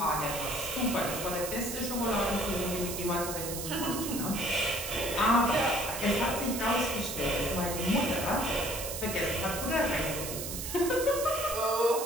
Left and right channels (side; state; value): right; noise; hiss, 6 dB below the sound